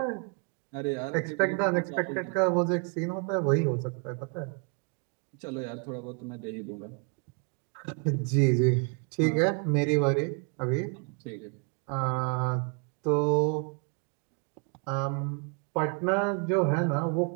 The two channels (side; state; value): left; quieter; 37.1 dB